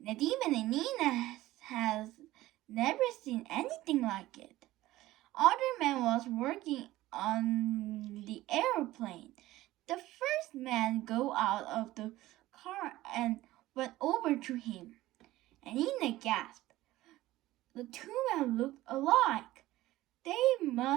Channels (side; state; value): left; quieter; 16.6 dB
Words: Nadim and Nina has never seen anything like it. Other man was working on the airplane. The first man got out of the car and went over to him. And Nina gasped. The two men looked alike. They